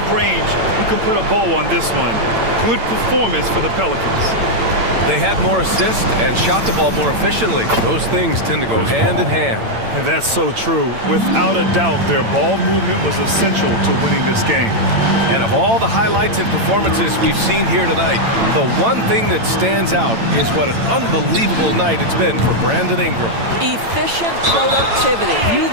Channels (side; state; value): left; late; 8.9 ms